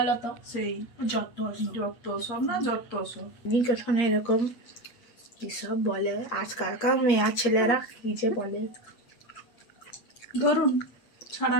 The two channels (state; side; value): late; right; 8.5 ms